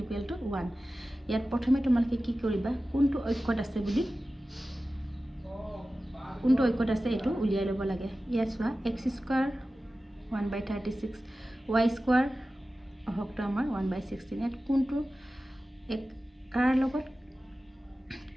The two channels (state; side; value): normal; both; correlation 0.95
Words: = 1 ইয়াত প্ৰথমে তোমালোকে কি কৰিবা কোনটো অক্ষত আছে বুলি কোনটো অক্ষত আছে এটো উলিয়াই লব লাগে ইয়াত চোৱা x² 1/36 y² অহকটো আমাৰ 1/16 ইয়াত কোনটো এক কাৰ লগত